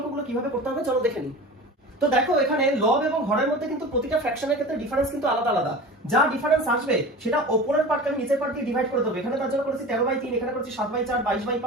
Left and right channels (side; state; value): both; normal; correlation 0.35